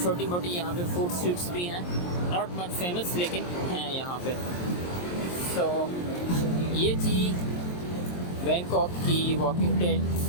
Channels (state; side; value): late; right; 23 ms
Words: छोटी मोटी यहाँ पे फूड स्ट्रीट्स भी हैं, नॉट मच फेमस लेकिन हैं यहाँ पे। तो ये थी बैंकॉक की वॉकिंग टेल।